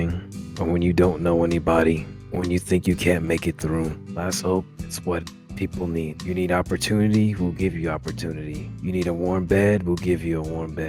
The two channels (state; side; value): identical; both; correlation 1.00